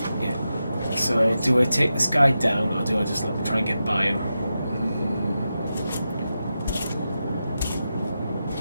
Yeah. So do I take this guy down or do I just try and get by him?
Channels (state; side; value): inverted; both; correlation -0.90